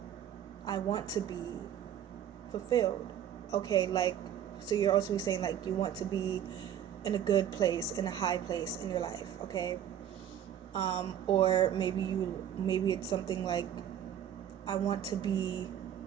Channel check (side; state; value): left; quieter; 10.0 dB